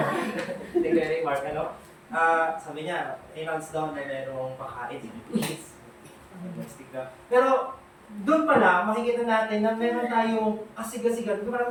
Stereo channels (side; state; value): both; identical; correlation 1.00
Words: Kuya Mark, sabi niya, announce daw na mayroong pakain, please. Pero, doon pala, makikita natin na meron tayong kasiga-siga,